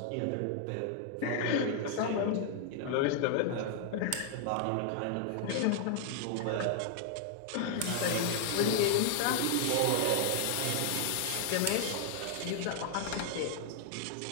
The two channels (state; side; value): different; both; correlation 0.00